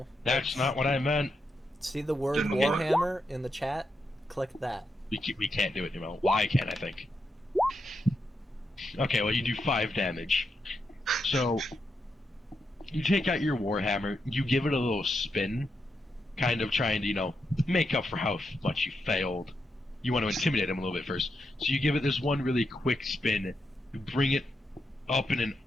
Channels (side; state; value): both; normal; correlation 0.84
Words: That's not what I meant. See the word Then what? Warhammer in the chat? Click that. We can't do it anymore. Why can't I think? Okay, well, you do 5 damage. So, you take out your Warhammer, you give it a little spin, kind of trying to, make up for how much you failed. You want to intimidate him a little bit first. So you give it this one really quick spin, you bring it up in an